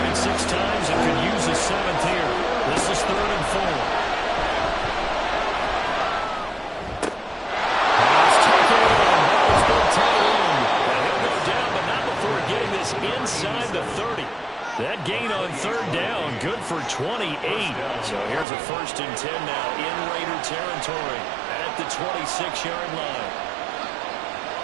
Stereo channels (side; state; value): left; drops out; at 18.4 s